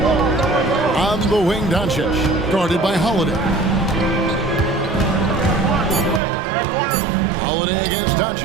On the wing, Doncic. Guarded by Holiday. Holiday against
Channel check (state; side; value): drops out; left; at 6.2 s